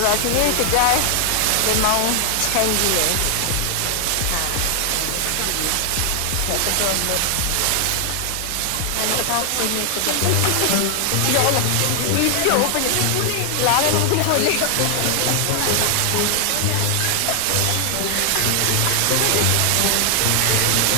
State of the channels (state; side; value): different; both; correlation 0.00